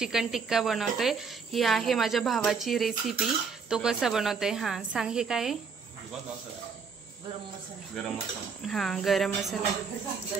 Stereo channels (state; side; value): quieter; left; 5.4 dB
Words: टिक्का बनवतोय. ही आहे माझ्या भावाची रेसिपी. तो कसा बनवतोय सांग. हे काय गरम मसाला.